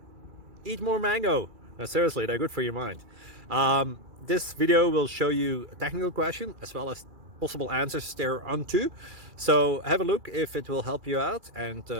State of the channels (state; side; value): late; left; 2.3 ms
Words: Eat more mango. No, seriously, they're good for your mind. This video will show you a technical question as well as possible answers thereunto. So have a look if it will help you out, and